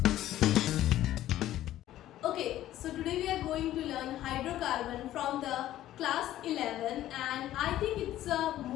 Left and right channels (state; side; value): quieter; right; 13.5 dB